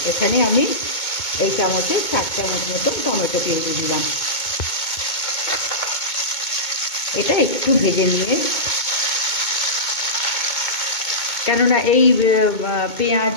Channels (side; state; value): right; late; 2.2 ms